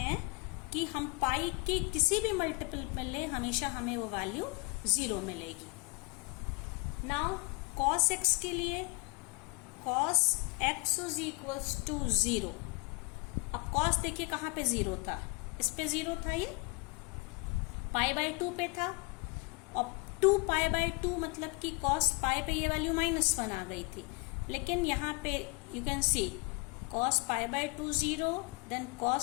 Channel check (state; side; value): quieter; right; 28.4 dB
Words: कि हम पाई की किसी भी मल्टीपल में लें, हमेशा हमें वो वैल्यू 0 मिलेगी. नाउ cos x के लिए cos x is equals to 0. अब cos देखिए कहाँ पे 0 था, इस पे 0 था, ये पाई बाई 2 पे था, और 2 पाई बाई 2 मतलब कि cos पाई पे ये वैल्यू -1 आ गई थी. लेकिन यहाँ पे you can see cos pi by 2 0, then